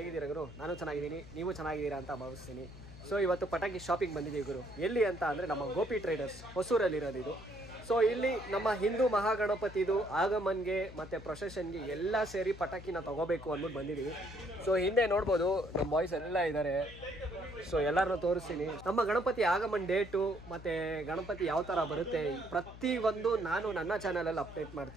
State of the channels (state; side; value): noise; left; hum, 15 dB below the sound